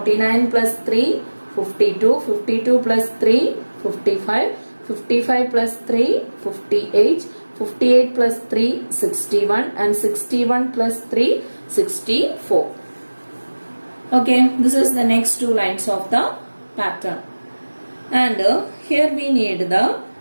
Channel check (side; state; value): both; inverted; correlation -1.00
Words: plus 3, 52, 52 plus 3, 55, 55 plus 3, 58, 58 plus 3, 61, and 61 plus 3, 64. Okay, this is the next two lines of the pattern. And here we need the